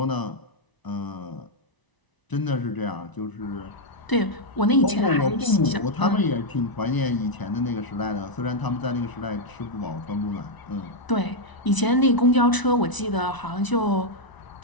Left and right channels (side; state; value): right; late; 1.0 ms